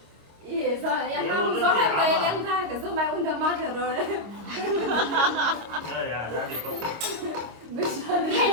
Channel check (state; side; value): late; left; 26 ms